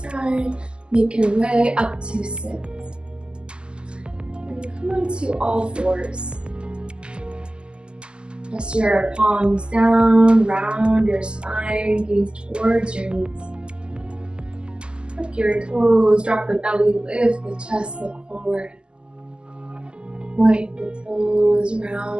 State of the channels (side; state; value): left; late; 0.049 ms